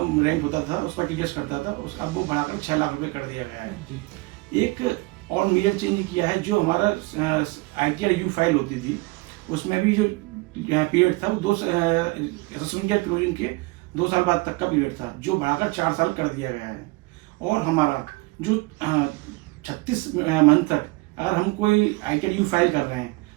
रैंक होता था, उस पर टीडीएस करता था, अब वो बढ़ाकर 6 लाख रुपये कर दिया गया है। एक और मेजर चेंज किया है, जो हमारा ITR यू फाइल होती थी, उसमें भी जो पीरियड था वो असेसमेंट क्लोजिंग के 2 साल बाद तक का पीरियड था, जो बढ़ाकर 4 साल कर दिया गया है। और हमारा जो 36 मंथ तक अगर हम कोई ITR यू फाइल कर रहे हैं,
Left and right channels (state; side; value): quieter; left; 24.0 dB